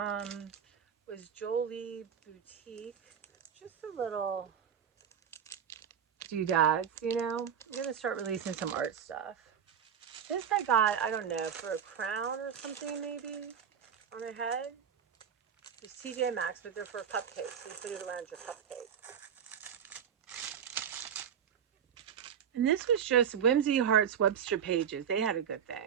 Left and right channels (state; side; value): quieter; left; 8.2 dB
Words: was Jolie Boutique. Just a little doodads, you know. I'm gonna start releasing some art stuff. This I got, I don't know, for a crown or something maybe on her head. It's TJ Maxx, but they're for cupcakes. You put it around your cupcake. And this was just Whimsy Hearts Webster pages. They had a good